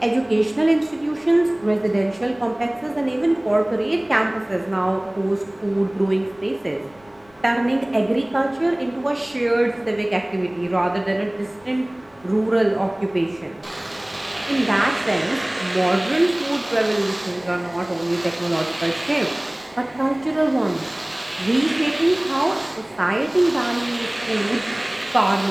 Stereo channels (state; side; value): noise; left; rumble, 30 dB below the sound